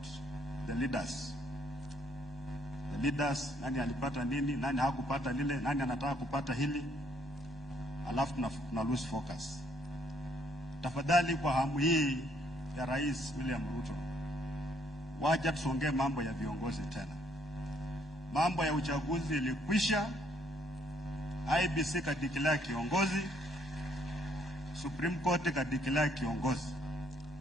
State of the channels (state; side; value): normal; both; correlation 0.68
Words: the leaders. The leaders, nani alipata nini, nani hakupata lile, nani anataka kupata hili. Alafu tuna lose focus. Tafadhali kwa hamu hii ya Rais William Ruto, wacha tusongee mambo ya viongozi tena. Mambo ya uchaguzi ilikwisha, IBC kadeclare kiongozi, Supreme Court kadeclare kiongozi.